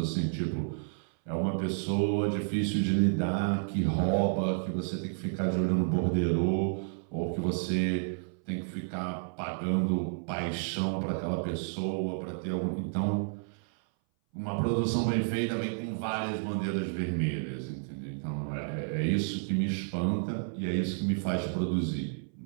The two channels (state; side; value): silent; left; 57 dB below the other